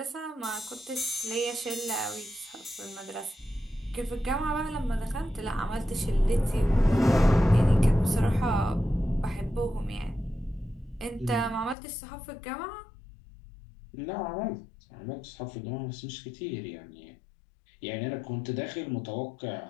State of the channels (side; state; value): right; drops out; at 11.8 s